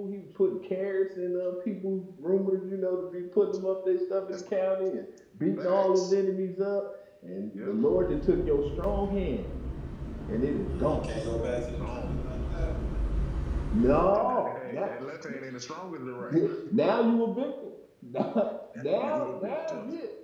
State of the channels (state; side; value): identical; both; correlation 1.00